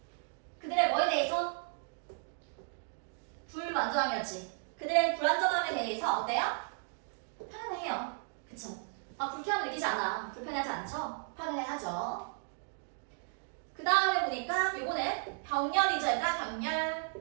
그들의 뭐에 대해서? 불만족함이었지. 그들의 불안정함에 대해서 어때요? 편안해요. 그쵸? 불쾌함을 느끼지 않아. 불편하지 않죠? 편안해하죠. 그 다음에 보니까 요거는 병렬이죠. 얘들아 병렬.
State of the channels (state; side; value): silent; left; 55 dB below the other